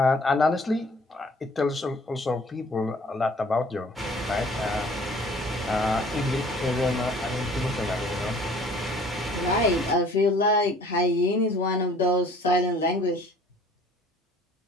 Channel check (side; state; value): both; normal; correlation 0.53